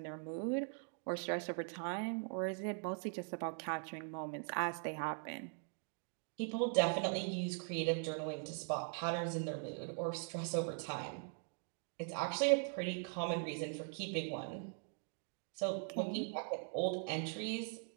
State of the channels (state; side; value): silent; left; 50 dB below the other